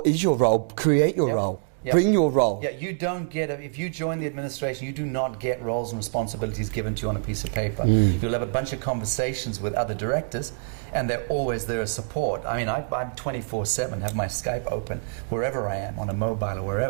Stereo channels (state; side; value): silent; left; digital silence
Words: is your role? Create your role. Bring your role. You don't get, if you join the administration, you do not get roles and responsibilities given to you on a piece of paper. You'll have a bunch of conversations with other directors, and they're always there as support. I mean, I'm 24/7, have my Skype open wherever I am, on a mobile or